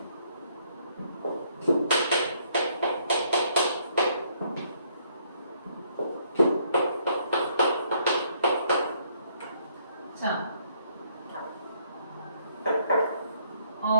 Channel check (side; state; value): both; inverted; correlation -0.68